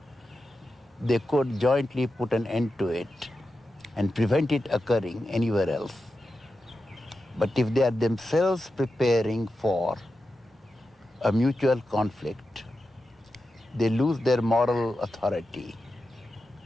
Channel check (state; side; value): normal; both; correlation 0.90